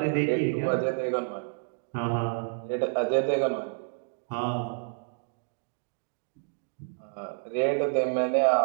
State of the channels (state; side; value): silent; left; digital silence